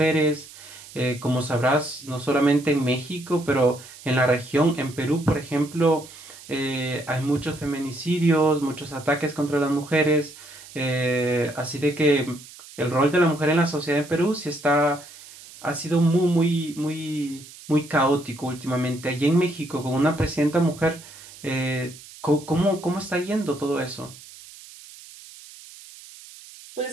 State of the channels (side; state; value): right; noise; hiss, 18 dB below the sound